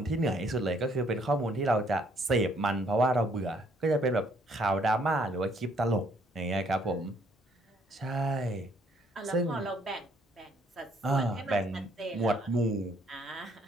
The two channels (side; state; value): both; normal; correlation 0.65